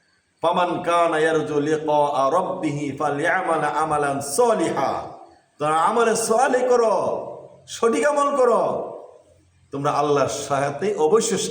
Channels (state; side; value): identical; both; correlation 1.00